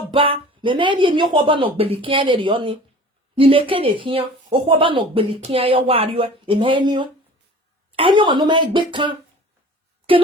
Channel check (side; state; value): both; normal; correlation 0.43